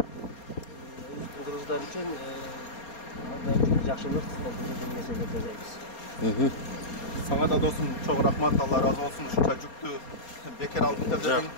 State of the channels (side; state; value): right; late; 4.3 ms